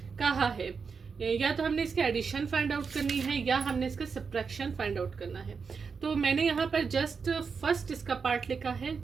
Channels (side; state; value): left; quieter; 5.5 dB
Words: कहा है, या तो हमने इसके एडिशन फाइंड आउट करनी है या हमने इसका सब्ट्रैक्शन फाइंड आउट करना है। तो मैंने यहाँ पर जस्ट फर्स्ट इसका पार्ट लिखा है,